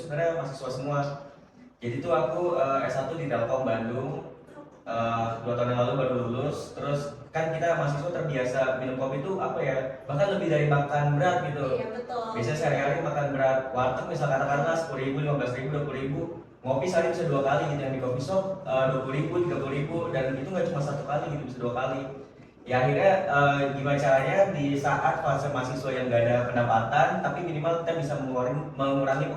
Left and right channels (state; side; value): identical; both; correlation 1.00